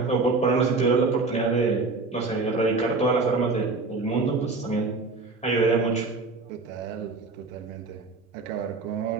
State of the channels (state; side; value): quieter; left; 3.7 dB